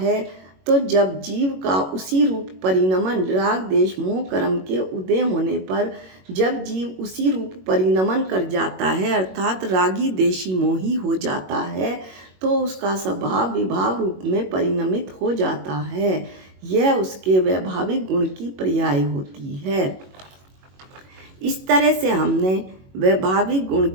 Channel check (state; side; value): late; left; 21 ms